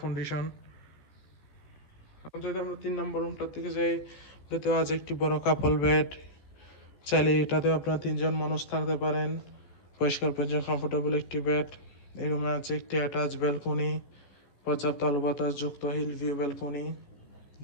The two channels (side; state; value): right; late; 14 ms